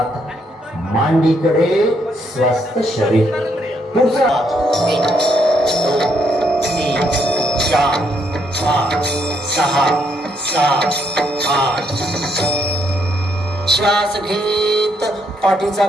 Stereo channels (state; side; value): normal; both; correlation 0.74